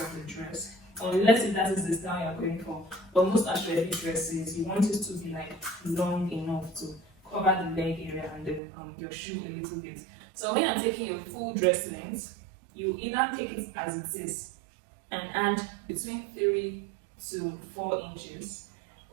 the dress, unless if that is the style you're going for. But most actually dresses, you want it to be like long enough to cover the leg area and then your shoe a little bit. So when you're taking your full dress length, you either take it as it is and add between 3 to 4 inches,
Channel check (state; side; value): drops out; left; at 8.6 s